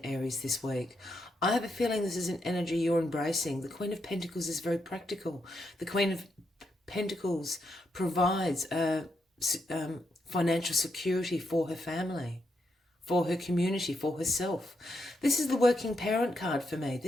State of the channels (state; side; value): normal; both; correlation 0.81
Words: Aries, this week. I have a feeling this is an energy you're embracing. The Queen of Pentacles is very practical. The Queen of Pentacles provides financial security for her family, for her community, for herself. This is the working parent card for me.